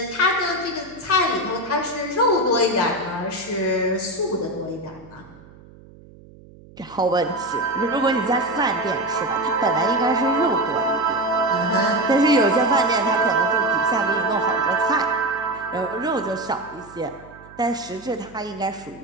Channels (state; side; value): noise; right; hum, 22 dB below the sound